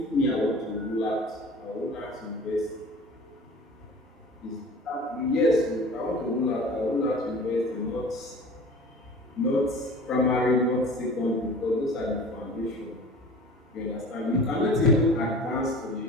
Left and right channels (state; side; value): normal; both; correlation 0.42